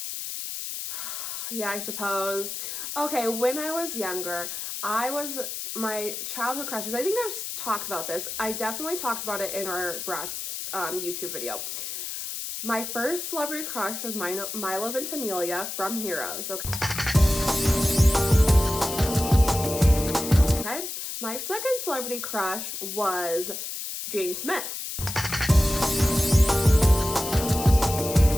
Yeah, I suppose. Okay, when I was younger, my childhood crushes, I think I've talked about this. I definitely talked about it in our Bratz YouTube video. My first celebrity crush was Milo Ventimiglia from Heroes, okay? Okay. My second celebrity crush was Jane Smith.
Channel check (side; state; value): left; noise; hiss, 6 dB below the sound